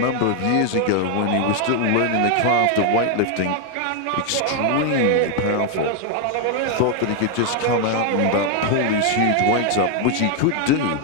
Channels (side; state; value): both; different; correlation 0.01